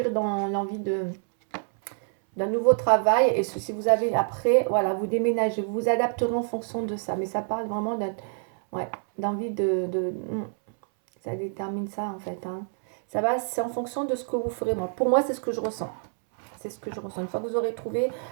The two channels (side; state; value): left; silent; 60 dB below the other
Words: dans l'envie d'un nouveau travail. Et si vous avez après, voilà, vous déménagez, vous vous adapterez en fonction de ça. Mais ça parle vraiment ouais, d'envie ça détermine ça en fait, hein. Ça va, c'est en fonction de ce que vous ferez. Pour moi, c'est ce que je ressens. C'est ce que je ressens. Une fois que vous aurez trouvé